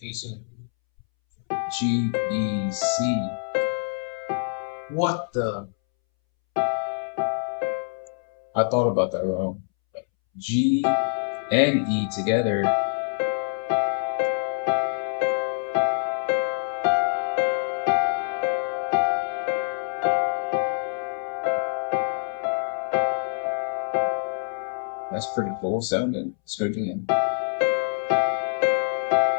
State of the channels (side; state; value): right; silent; 61 dB below the other